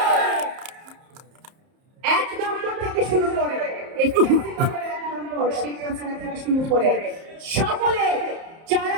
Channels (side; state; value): left; late; 31 ms